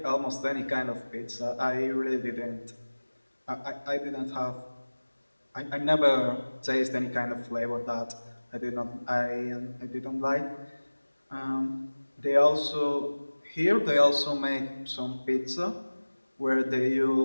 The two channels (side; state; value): both; inverted; correlation -1.00